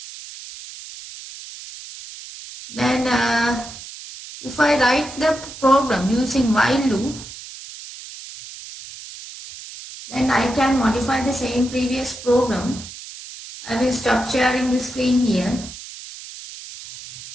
Then if I write the program using while loop, then I can modify the same previous program. I will stop sharing the screen here.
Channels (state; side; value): noise; right; hiss, 14 dB below the sound